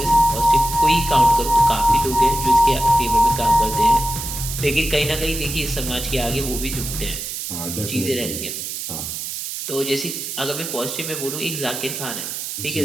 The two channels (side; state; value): right; noise; hiss, 6 dB below the sound